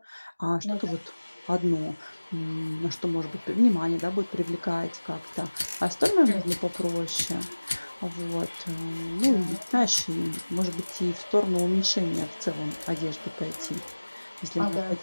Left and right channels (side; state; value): both; inverted; correlation -1.00